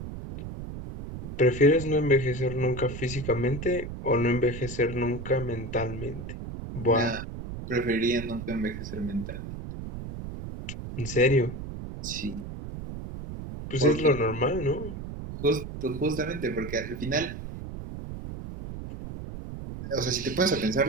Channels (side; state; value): right; noise; rumble, 9 dB below the sound